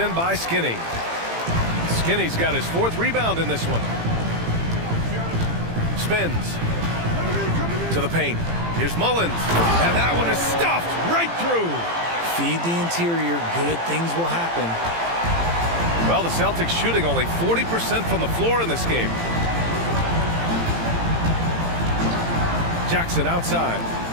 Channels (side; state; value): left; late; 18 ms